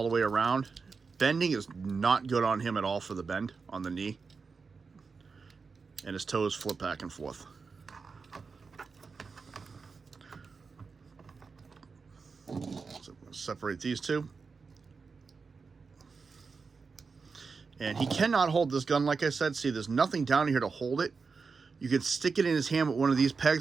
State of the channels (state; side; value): quieter; left; 4.9 dB